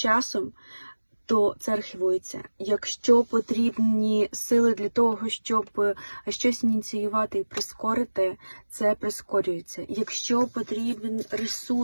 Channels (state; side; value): inverted; both; correlation -1.00